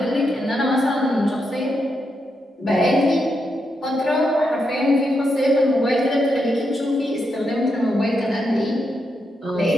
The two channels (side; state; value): both; normal; correlation 0.83